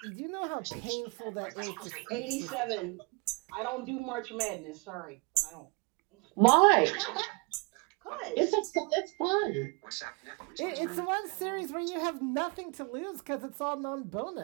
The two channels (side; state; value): left; quieter; 30.7 dB